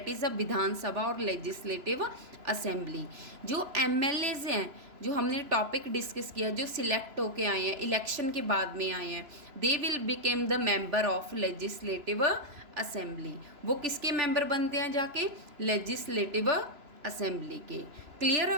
इज़ अ विधानसभा और लेजिस्लेटिव असेंबली. जो एमएलएज हैं, जो हमने टॉपिक डिस्कस किया, जो सिलेक्ट होके आए हैं, इलेक्शन के बाद में आए हैं, they will became the member of legislative assembly. वो किसके मेंबर बनते हैं जाके? लेजिस्लेटिव असेंबली के. Clear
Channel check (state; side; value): late; left; 3.0 ms